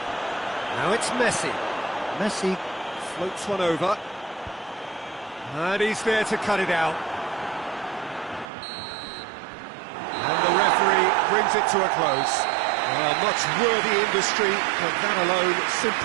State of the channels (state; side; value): drops out; left; at 8.5 s